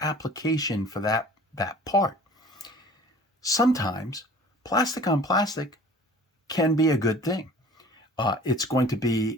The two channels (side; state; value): both; normal; correlation 0.46